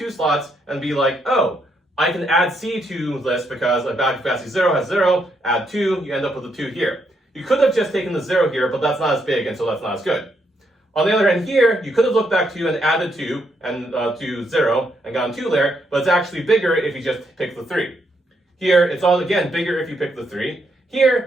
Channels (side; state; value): both; normal; correlation 0.77